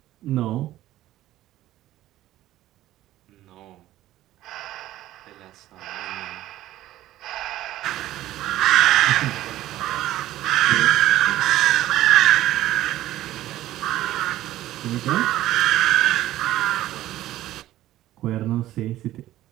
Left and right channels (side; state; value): left; quieter; 14.5 dB